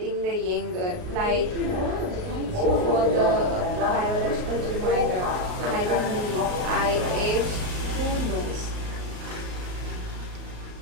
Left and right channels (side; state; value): left; late; 39 ms